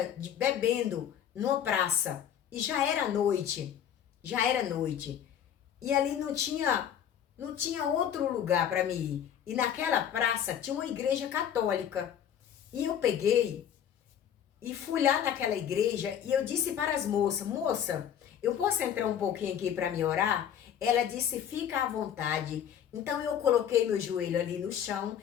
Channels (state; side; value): quieter; right; 9.3 dB